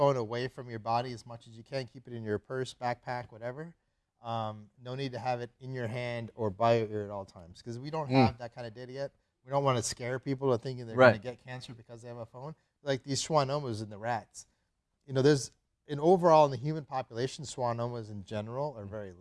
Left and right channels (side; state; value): both; identical; correlation 1.00